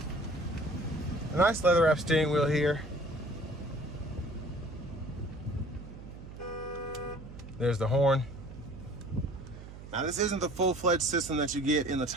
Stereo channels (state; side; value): noise; right; hum, 14 dB below the sound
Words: A nice leather wrap steering wheel here. There's the horn. Now this isn't the full-fledged system that you get in the